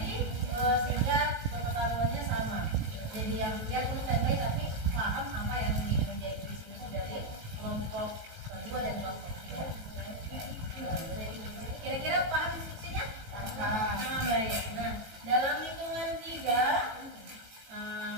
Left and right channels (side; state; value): left; late; 18 ms